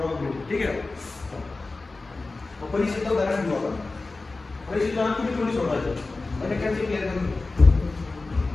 ठीक आहे. परीक्षेचं उदाहरण घेऊ आपण. परीक्षेचं तुम्ही थोडी सोडवायचं म्हणजे कॅल्क्युलेशन क्लिअर करून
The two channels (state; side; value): quieter; right; 3.5 dB